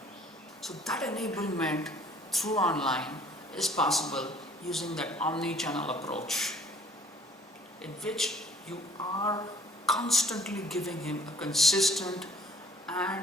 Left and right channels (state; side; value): normal; both; correlation 0.57